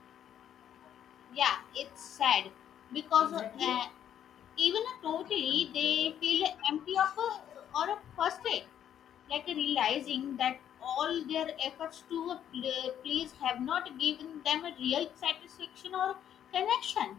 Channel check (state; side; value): quieter; right; 9.9 dB